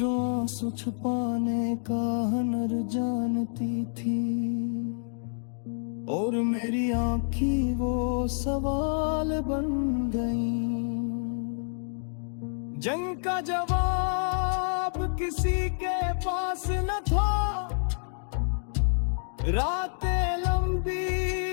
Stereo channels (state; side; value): silent; right; digital silence